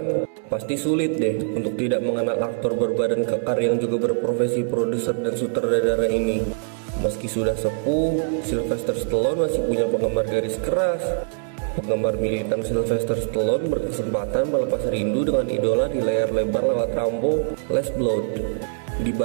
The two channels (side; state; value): left; silent; digital silence